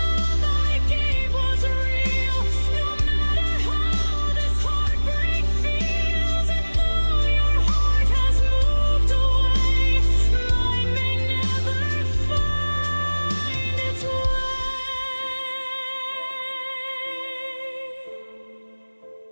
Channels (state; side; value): inverted; both; correlation -1.00